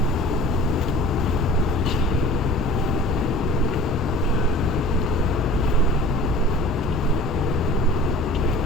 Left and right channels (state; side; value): normal; both; correlation 0.44